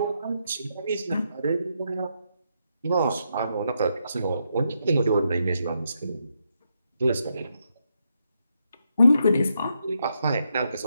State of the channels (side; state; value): both; inverted; correlation -0.80